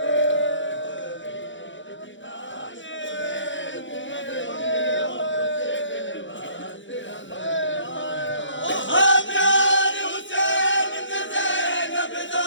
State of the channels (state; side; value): late; right; 0.55 ms